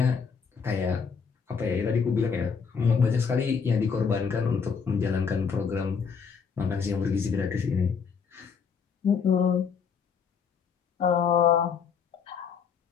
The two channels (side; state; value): right; quieter; 6.1 dB